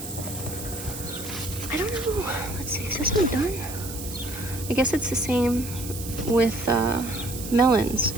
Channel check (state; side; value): noise; right; hiss, 11 dB below the sound